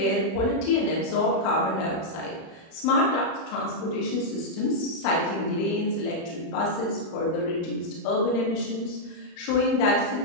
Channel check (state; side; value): late; right; 25 ms